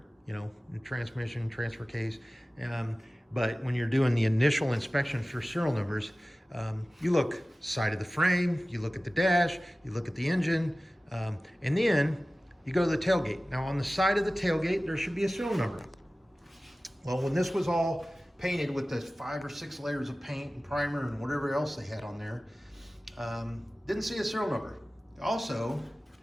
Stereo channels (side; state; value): both; normal; correlation 0.97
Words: you know, in transmission, transfer case. But when you're doing the initial inspection for serial numbers, you look side of the frame, you look at the dash, you look at the engine, and then you go to the tailgate. Now on the side of the tailgate, there should be a serial number. Well, when this was all painted with the 5 or 6 layers of paint and primer and whatever else they had on there, didn't see a serial number. Also,